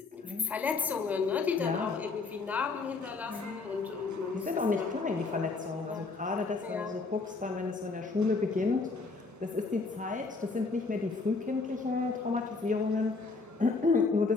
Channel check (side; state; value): right; quieter; 4.0 dB